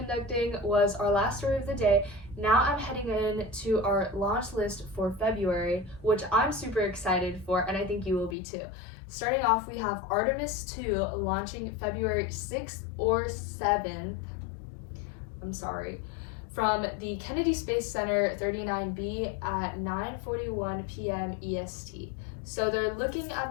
was our last story of the day. Now I'm heading in to our launch list for February, which I'm super excited for, and I think you will be too. Starting off, we have Artemis 2 launching February 6th or 7th. From the Kennedy Space Center 39B at 9:41 p.m. EST. So they're looking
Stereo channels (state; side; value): drops out; right; at 8.3 s